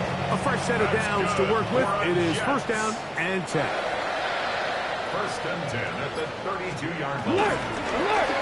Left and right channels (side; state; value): both; identical; correlation 1.00